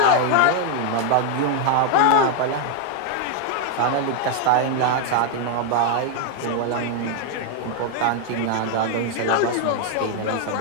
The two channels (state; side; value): different; both; correlation 0.01